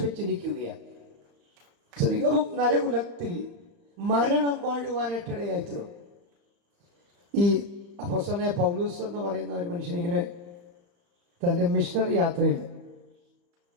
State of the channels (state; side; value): late; left; 35 ms